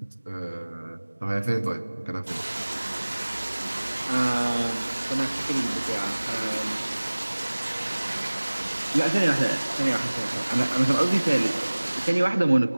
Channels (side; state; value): both; inverted; correlation -1.00